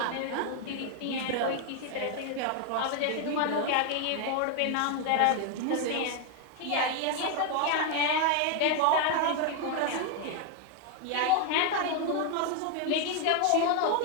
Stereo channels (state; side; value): different; both; correlation 0.01